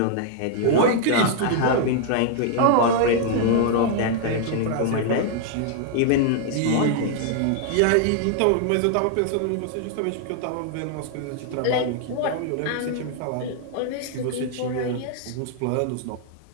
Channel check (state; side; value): different; both; correlation 0.00